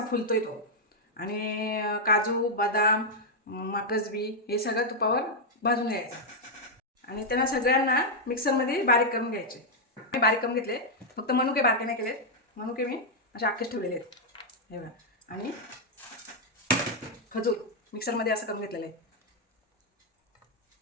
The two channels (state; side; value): normal; both; correlation -0.02